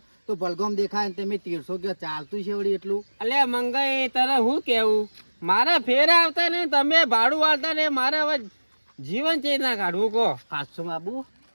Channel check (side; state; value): both; inverted; correlation -1.00